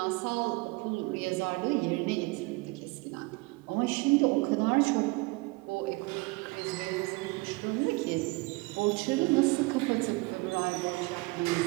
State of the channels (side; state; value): left; quieter; 25.1 dB